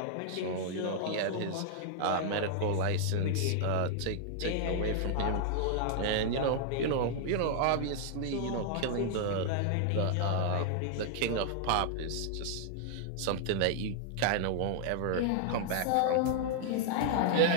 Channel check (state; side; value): different; both; correlation -0.01